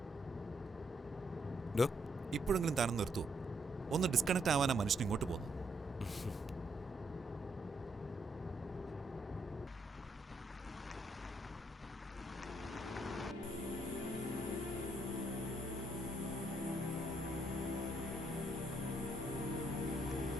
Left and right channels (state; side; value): normal; both; correlation 0.74